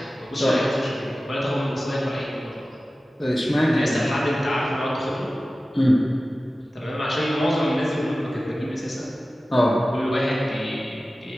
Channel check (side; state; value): both; normal; correlation 0.96